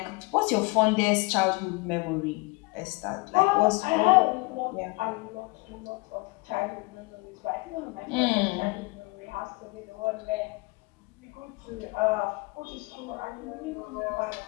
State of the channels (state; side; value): quieter; right; 26.5 dB